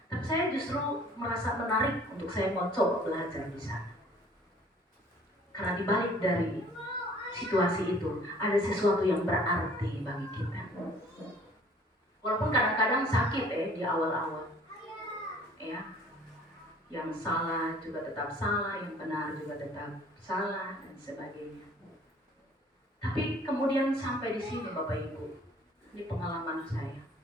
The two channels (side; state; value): both; normal; correlation 0.54